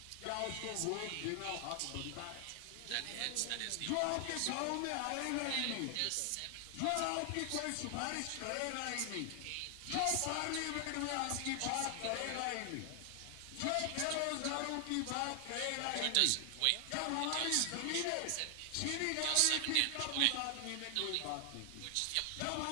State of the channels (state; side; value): different; both; correlation 0.00